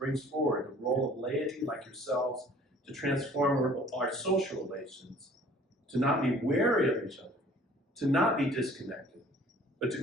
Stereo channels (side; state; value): both; normal; correlation 0.52